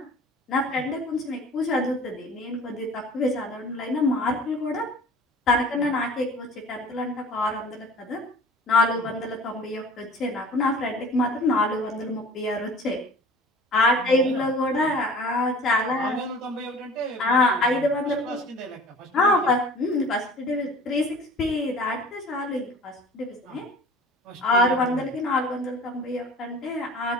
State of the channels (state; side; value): normal; both; correlation 0.44